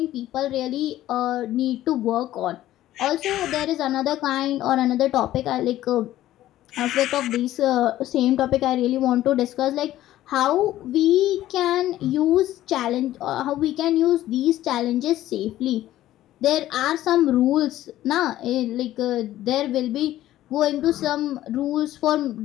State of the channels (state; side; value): quieter; right; 14.1 dB